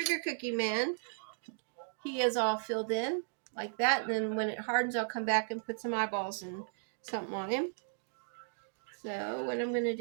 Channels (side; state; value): left; silent; digital silence